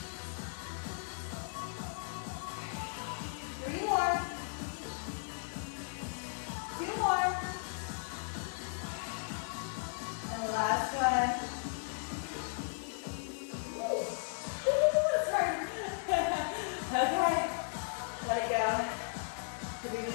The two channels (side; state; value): right; silent; digital silence